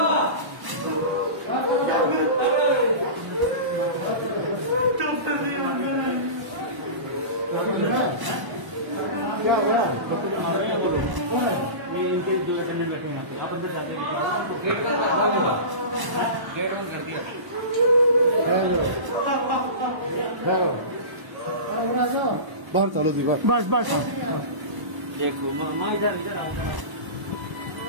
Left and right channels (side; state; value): left; late; 1.0 ms